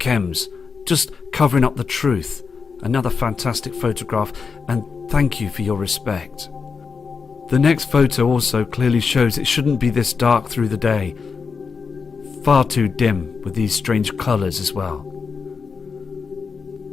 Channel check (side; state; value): right; quieter; 5.4 dB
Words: just covering up the truth. Another fantastic photograph, and thank you for your respect. The next photo also clearly shows it shouldn't be this dark through the day. Far too dim with these strange colours as well.